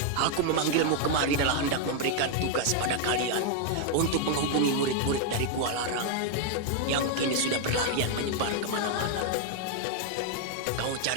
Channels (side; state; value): both; different; correlation 0.00